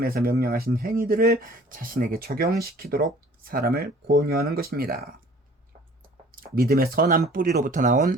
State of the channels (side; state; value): both; normal; correlation 0.51